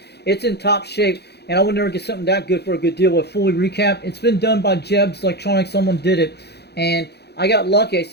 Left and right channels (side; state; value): right; late; 0.48 ms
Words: It's in top shape, and I would never get something that good for a good deal with fully recap. It's been done by Jeb's Electronics. Someone did it, and I got lucky. I